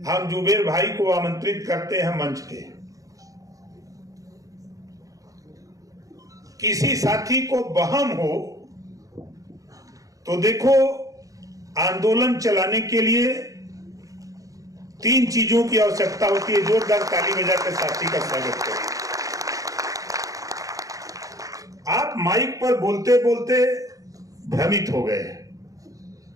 हम जुबेर भाई को आमंत्रित करते हैं मंच पे। किसी साथी को बहम हो तो देखो, आंदोलन चलाने के लिए 3 चीजों की आवश्यकता होती है। जोरदार ताली बजाकर साथी का स्वागत करिए। आप माइक पर बोलते बोलते भ्रमित हो गए,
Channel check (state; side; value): late; left; 0.17 ms